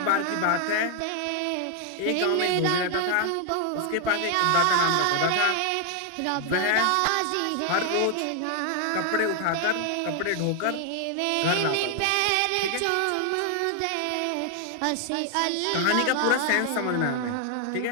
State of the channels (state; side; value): different; both; correlation 0.00